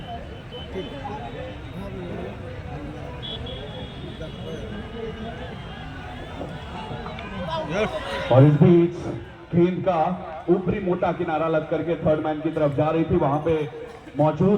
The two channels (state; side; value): identical; both; correlation 1.00